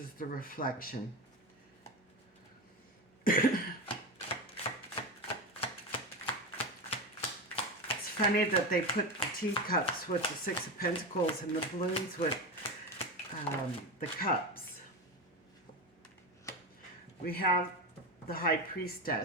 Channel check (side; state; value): both; normal; correlation 0.20